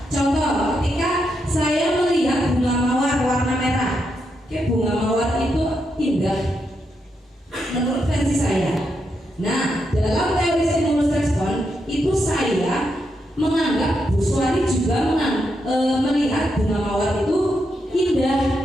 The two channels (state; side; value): normal; both; correlation 0.82